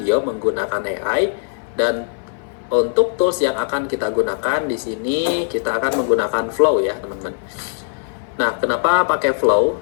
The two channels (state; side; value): silent; right; 59 dB below the other